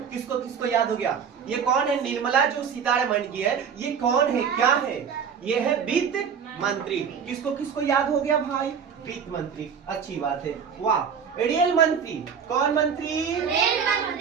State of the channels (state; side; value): quieter; left; 7.0 dB